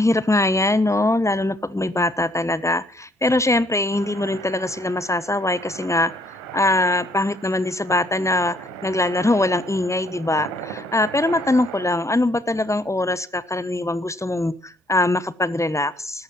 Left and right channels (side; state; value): both; normal; correlation 0.65